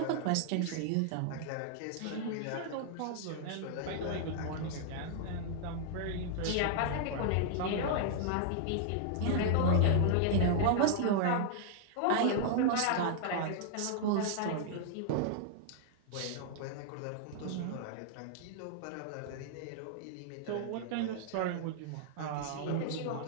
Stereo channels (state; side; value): different; both; correlation 0.00